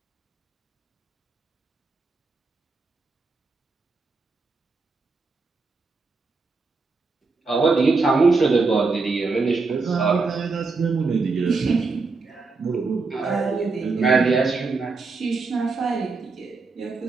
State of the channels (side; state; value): left; quieter; 4.1 dB